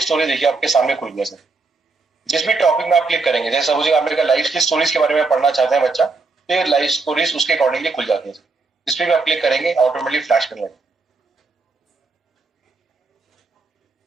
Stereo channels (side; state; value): left; quieter; 3.9 dB